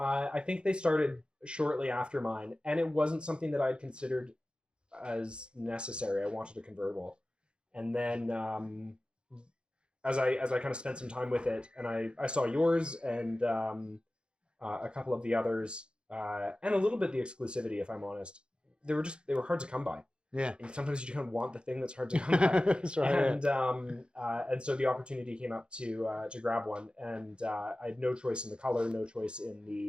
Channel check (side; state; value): left; late; 0.053 ms